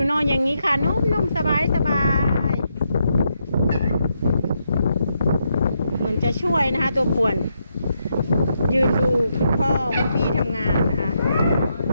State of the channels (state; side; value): inverted; both; correlation -0.80